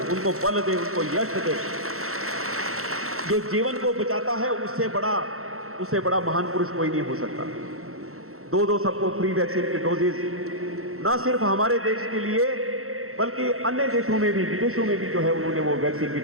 उनको बल दे, उनको यश दे। जो जीवन को बचाता है उससे बड़ा महान पुरुष कोई नहीं हो सकता। 2-2 सबको फ्री वैक्सीन की डोजेज ना सिर्फ हमारे देश के लिए बल्कि अन्य देशों में भी, विदेशों में भी जो है उन्होंने वो वैक्सीन की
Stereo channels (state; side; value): late; left; 0.63 ms